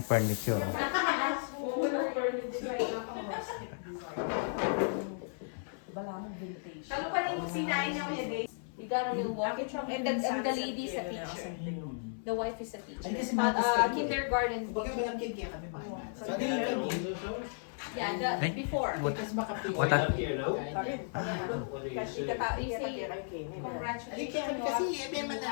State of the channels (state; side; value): silent; right; 55 dB below the other